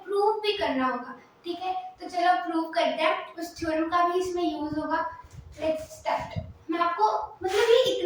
प्रूव भी करना होगा। ठीक है, तो चलो प्रूव करते हैं, उस थ्योरम का भी इसमें यूज होगा। Let's start. मैं आपको मतलब ये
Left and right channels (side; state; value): both; identical; correlation 1.00